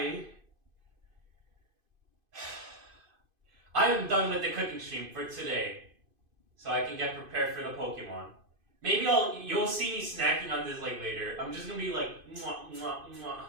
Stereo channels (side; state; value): left; late; 2.5 ms